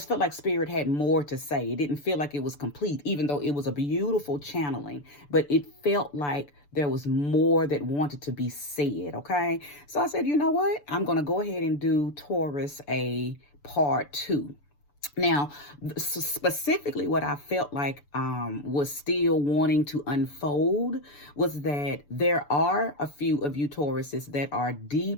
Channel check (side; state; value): right; late; 6.9 ms